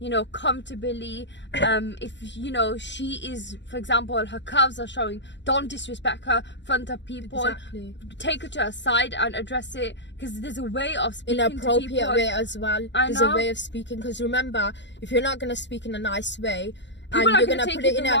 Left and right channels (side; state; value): right; late; 0.52 ms